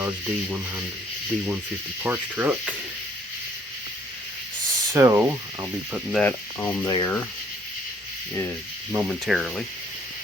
D150 parts truck. So I'll be putting that on there momentarily.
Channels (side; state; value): both; normal; correlation 0.62